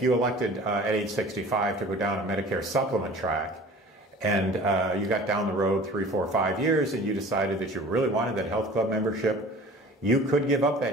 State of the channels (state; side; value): normal; both; correlation 0.44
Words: you elected at age 65 to go down a Medicare supplement track, and you got down the road 3, 4, 5 years and you decided that you really wanted that health club membership, you could give up